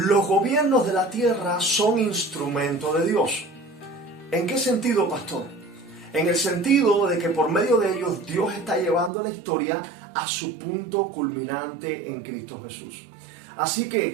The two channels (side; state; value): left; drops out; at 9.1 s